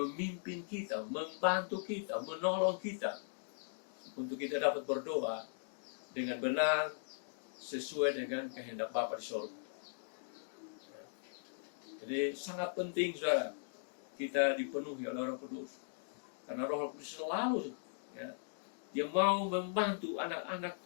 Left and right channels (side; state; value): right; silent; digital silence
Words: kita, membantu kita, menolong kita untuk kita dapat berdoa dengan benar sesuai dengan kehendak Bapa di surga. Jadi sangat penting, saudara, kita dipenuhi oleh Roh Kudus, karena Roh Kudus selalu, ya, dia mau membantu anak-anak